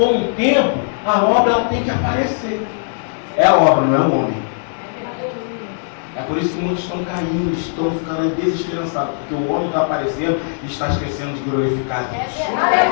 o tempo, a obra tem que aparecer. É a obra, não é o homem. É por isso que muitos estão caindo, estão ficando aí desesperançados, porque o homem está aparecendo e está esquecendo de glorificar Deus.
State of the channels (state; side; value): silent; right; 67 dB below the other